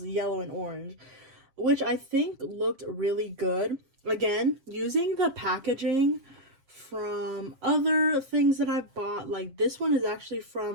yellow and orange, which I think looked really good. Again, using the packaging from other things that I've bought. Like this one is actually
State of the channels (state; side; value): late; left; 7.6 ms